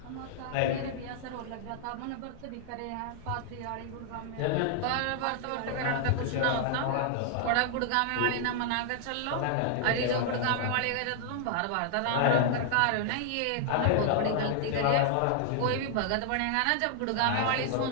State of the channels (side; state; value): both; different; correlation 0.00